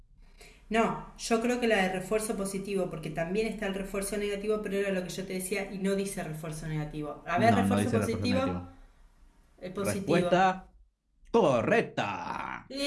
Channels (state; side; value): identical; both; correlation 1.00